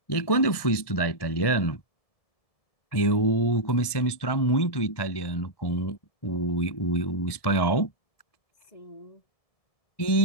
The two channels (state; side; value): late; right; 1.7 ms